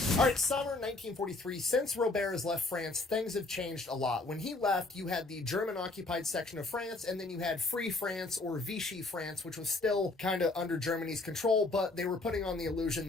All right, summer 1943. Since Robert has left France, things have changed a lot. When he left, you had the German-occupied section of France, and then you had Free France, or Vichy France, which was still kind of under Germany's control, but they were putting on the illusion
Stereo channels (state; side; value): quieter; right; 3.1 dB